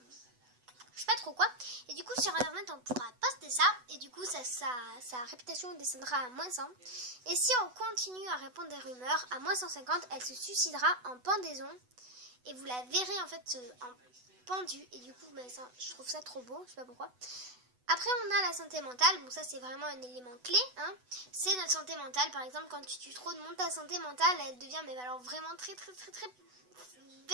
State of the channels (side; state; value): left; late; 8.0 ms